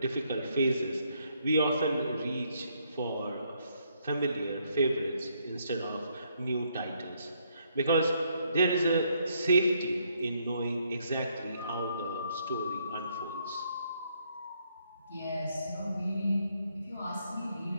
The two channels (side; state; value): both; inverted; correlation -0.72